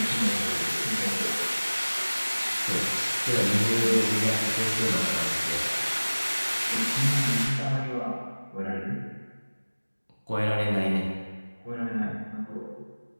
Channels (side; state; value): both; inverted; correlation -1.00